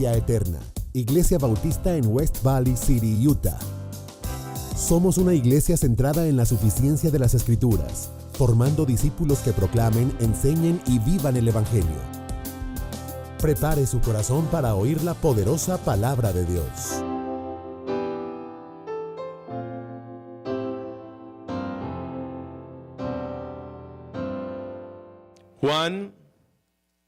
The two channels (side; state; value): both; identical; correlation 1.00